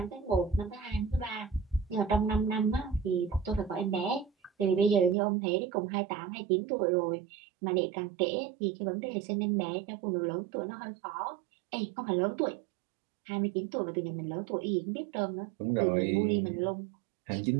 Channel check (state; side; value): drops out; left; at 5.2 s